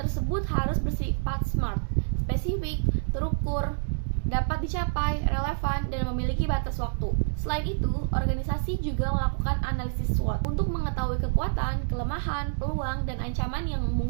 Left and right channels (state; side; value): silent; left; digital silence